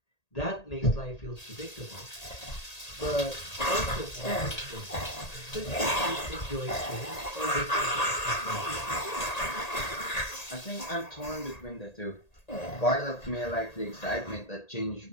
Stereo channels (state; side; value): late; right; 1.8 ms